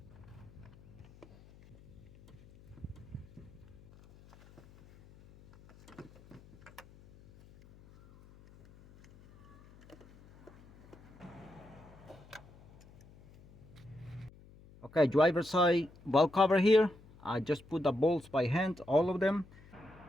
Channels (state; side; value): noise; left; hum, 23 dB below the sound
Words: Okay, driver side valve cover here. I just put the bolts by hand, all of them.